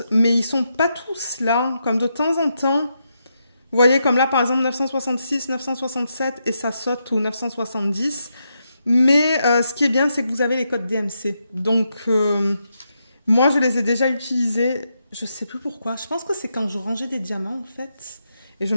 mais ils sont pas tous là, comme de temps en temps. Vous voyez, comme là, par exemple, 966, 967, et ça saute au 970. Mais ce qui est bien, c'est que vous avez les codes DMC. Donc, moi, je les ai déjà utilisés. Je sais plus pourquoi. Je pense que c'est quand je rangeais des diamants, en fait. Et je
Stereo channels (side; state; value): both; inverted; correlation -0.83